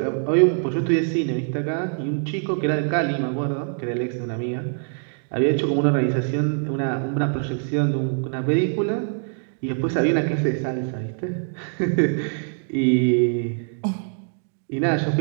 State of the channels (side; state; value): left; silent; 56 dB below the other